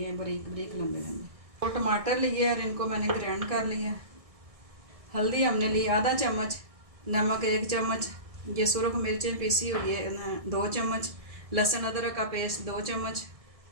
हैं बारीक बारीक लंबे लंबे। 2 टमाटर लिए और इनको मैंने ग्राइंड कर लिया। हल्दी हमने ली आधा चम्मच, नमक 1 चम्मच, ये सुरख मिर्चें पीसी हुई है 2 चम्मच, लहसुन अदरक का पेस्ट 2 चम्मच,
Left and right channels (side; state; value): left; late; 1.6 ms